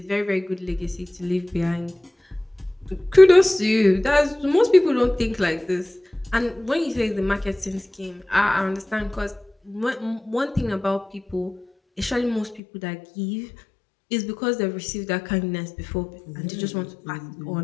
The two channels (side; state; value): right; drops out; at 12.6 s